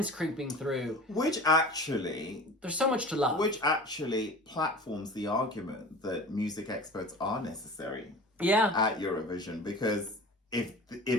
creeping through. Which actually... There's so much to love. Which actually platforms the argument that music experts are necessary at Eurovision. Because if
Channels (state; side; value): normal; both; correlation 0.38